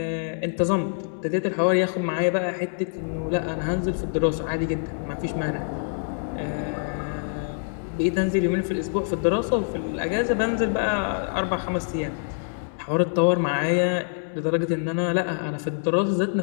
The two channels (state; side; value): silent; right; digital silence